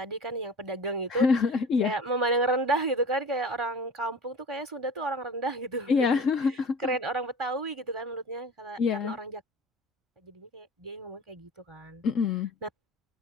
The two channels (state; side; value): normal; both; correlation 0.39